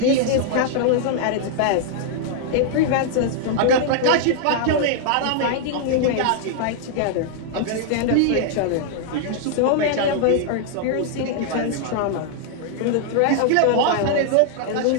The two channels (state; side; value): different; both; correlation -0.01